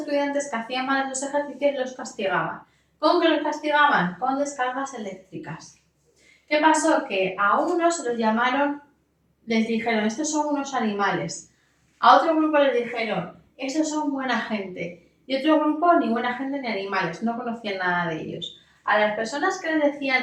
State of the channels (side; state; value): both; identical; correlation 1.00